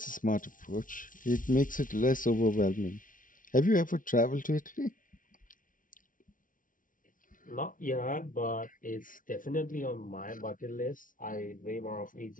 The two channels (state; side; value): late; right; 0.38 ms